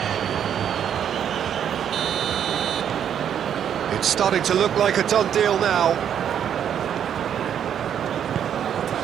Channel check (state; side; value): quieter; left; 9.0 dB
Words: It's starting to look like a done deal now.